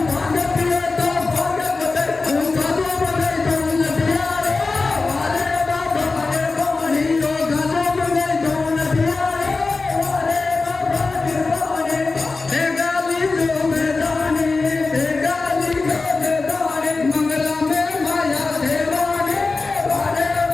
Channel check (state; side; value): quieter; right; 3.8 dB